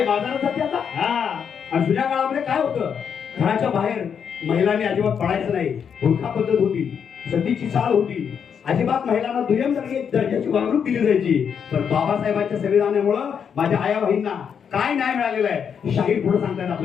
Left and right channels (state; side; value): quieter; right; 7.3 dB